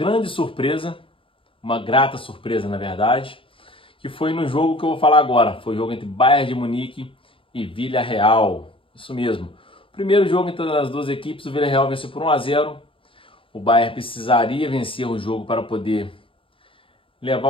surpresa, uma grata surpresa na verdade, que foi no jogo que eu vou falar agora. Foi o jogo entre Bayern de Munique e Villarreal, isso mesmo. Primeiro jogo entre as duas equipes, o Villarreal venceu por 1-0. O Bayern precisaria vencer o jogo para poder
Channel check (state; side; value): late; right; 0.26 ms